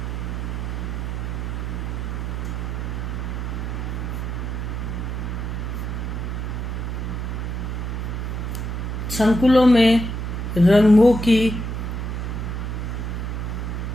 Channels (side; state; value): right; noise; hum, 3 dB below the sound